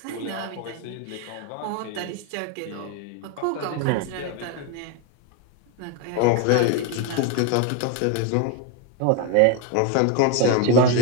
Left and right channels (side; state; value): both; different; correlation 0.01